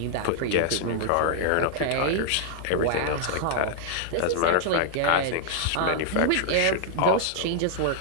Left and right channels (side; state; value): both; different; correlation -0.01